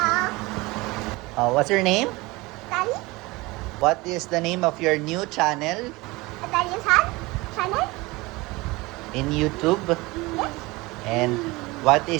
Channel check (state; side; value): quieter; left; 22.4 dB